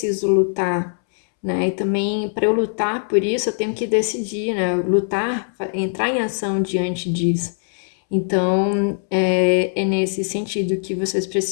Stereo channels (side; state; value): right; silent; 65 dB below the other